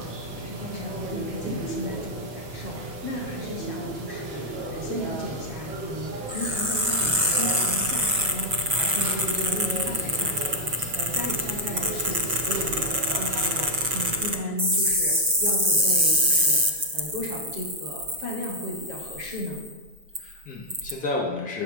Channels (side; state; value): left; late; 7.3 ms